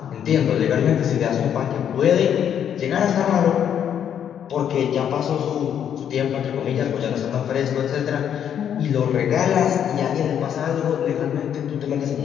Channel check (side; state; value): right; quieter; 9.1 dB